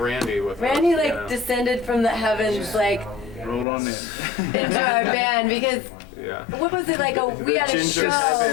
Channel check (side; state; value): right; drops out; at 3.7 s